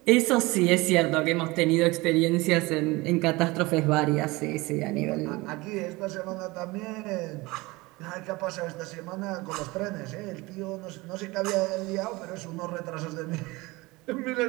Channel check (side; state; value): left; quieter; 22.4 dB